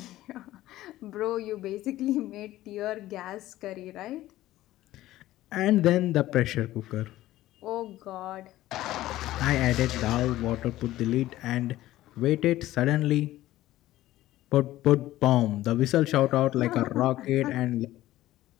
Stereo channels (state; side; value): quieter; right; 15.4 dB